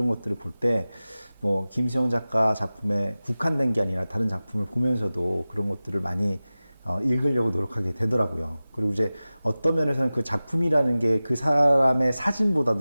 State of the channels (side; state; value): both; inverted; correlation -0.97